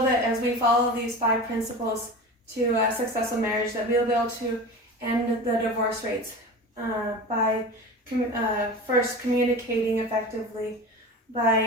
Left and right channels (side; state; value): both; normal; correlation 0.32